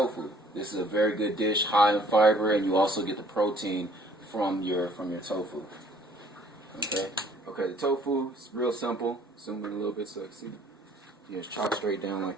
This is a very good dish, high in fiber, and you also get the protein from your tofu. Okay, the tofu is real simple. Zoom in a little bit so I can see. You just chop straight down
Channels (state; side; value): normal; both; correlation 0.58